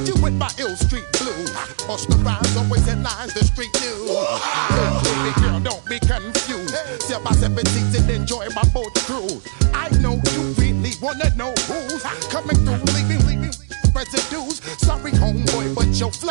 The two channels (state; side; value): silent; left; digital silence